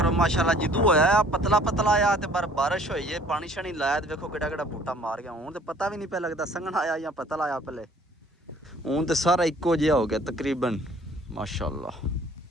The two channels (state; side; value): normal; both; correlation 0.55